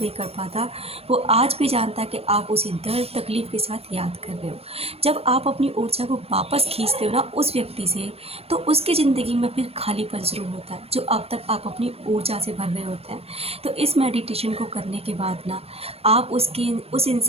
कर पाता। वो आज भी जानता है कि आप उसी दर्द तकलीफ़ के साथ याद कर रहे हो। जब आप अपनी ऊर्जा को वापस खींचते हो ना उस व्यक्ति से, तो उसकी ज़िंदगी में फिर खालीपन शुरू होता है जो अब तक आप अपनी ऊर्जा से भर रहे होते हैं। तो इस मेडिटेशन को करने के बाद ना आप उस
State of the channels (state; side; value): late; left; 0.29 ms